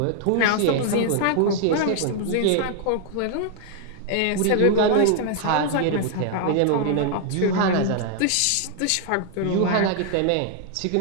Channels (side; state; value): both; different; correlation 0.00